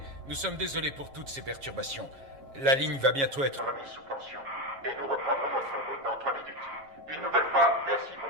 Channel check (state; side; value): late; left; 7.3 ms